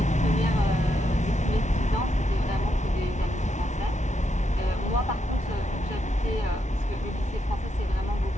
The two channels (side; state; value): both; normal; correlation 0.81